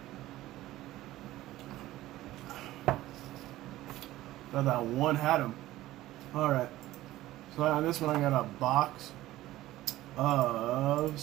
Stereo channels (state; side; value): quieter; left; 15.9 dB